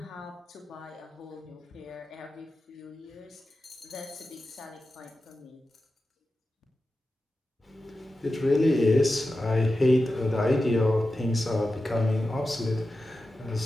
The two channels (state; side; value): normal; both; correlation 0.92